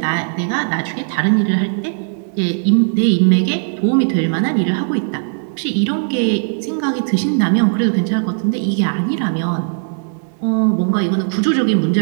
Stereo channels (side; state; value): left; silent; digital silence